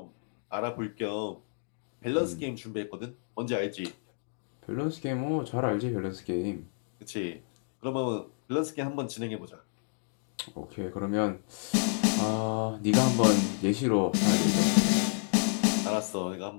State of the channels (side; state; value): right; silent; digital silence